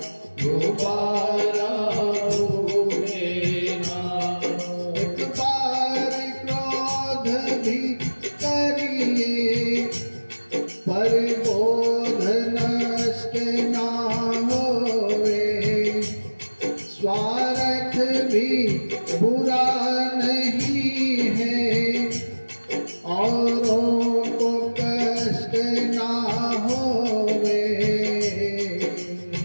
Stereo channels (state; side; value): inverted; both; correlation -1.00